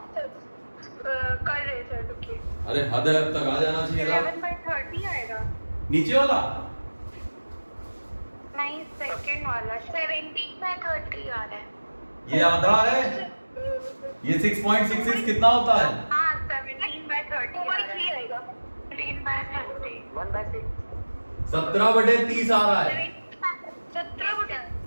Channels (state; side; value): inverted; both; correlation -1.00